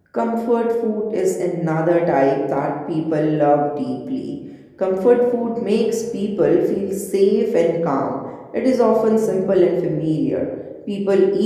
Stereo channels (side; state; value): both; identical; correlation 1.00